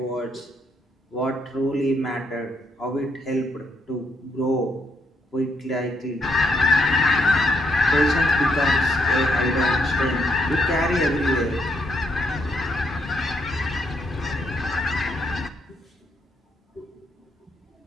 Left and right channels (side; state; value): both; normal; correlation 0.75